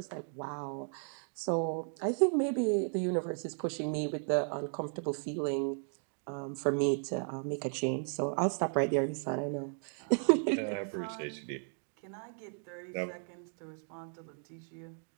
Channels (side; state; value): left; silent; 54 dB below the other